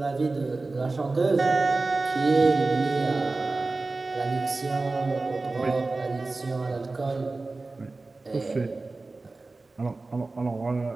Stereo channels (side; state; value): left; quieter; 3.5 dB